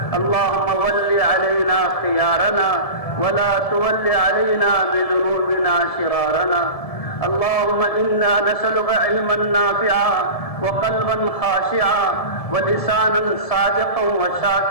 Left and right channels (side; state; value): right; late; 1.7 ms